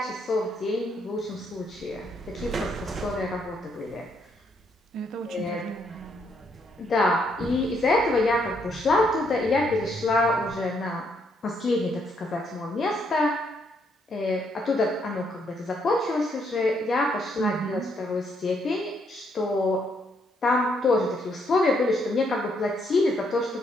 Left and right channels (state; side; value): normal; both; correlation 0.73